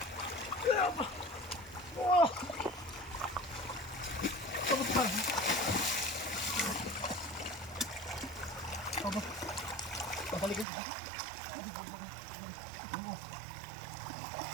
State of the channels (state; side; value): drops out; left; at 10.7 s